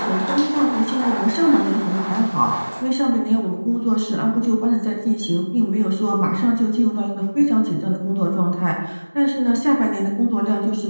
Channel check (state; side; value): inverted; both; correlation -1.00